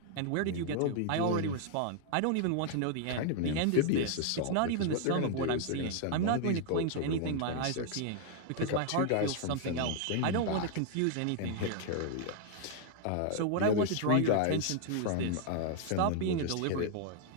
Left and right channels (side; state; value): both; different; correlation 0.00